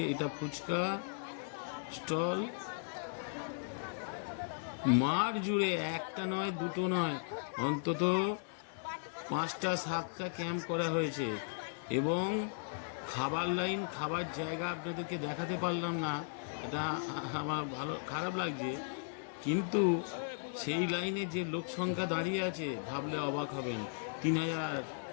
এটা ফুচকা স্টল। মাঠ জুড়ে একটা নয়, দুটো নয়, অন্তত 5টা 7টা ক্যাম্প করা হয়েছে এবং খাবার লাইন, খাবার জায়গা আপনাদেরকে দেখাতে পারলাম না, এটা আমার খারাপ লাগছে। কিন্তু সেই লাইনে যে লোক সংখ্যা দাঁড়িয়ে আছে ভাবলে অবাক হবেন। 3000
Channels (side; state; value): right; silent; 53 dB below the other